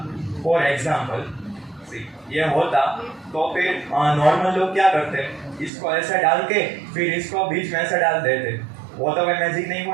फॉर एग्जांपल ये होता, तो फिर नॉर्मल लोग क्या करते, इसको ऐसा डाल के फिर इसको बीच में ऐसा डाल देते। वो तो मैं मैजिक नहीं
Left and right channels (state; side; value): drops out; left; at 5.7 s